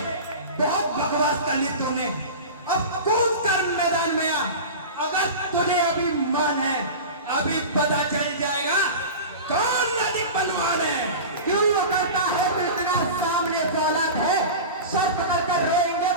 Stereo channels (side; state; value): both; inverted; correlation -0.31